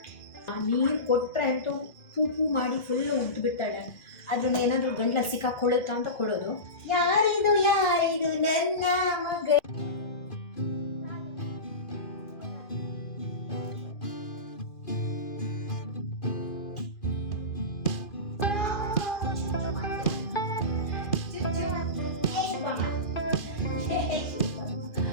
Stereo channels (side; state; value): right; late; 2.4 ms